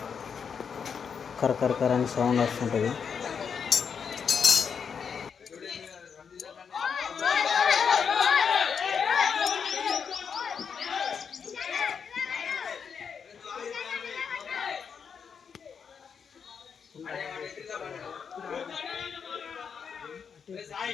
కరకర అని సౌండ్ వస్తుంటుంది.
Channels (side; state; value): right; quieter; 6.6 dB